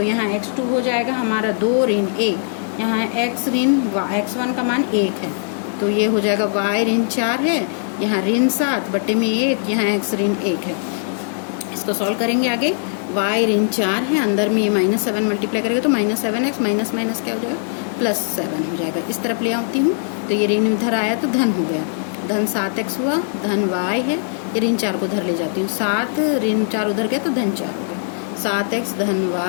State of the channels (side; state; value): right; silent; 61 dB below the other